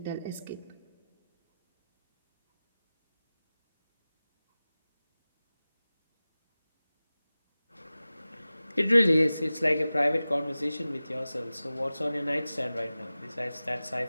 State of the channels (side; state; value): both; inverted; correlation -0.96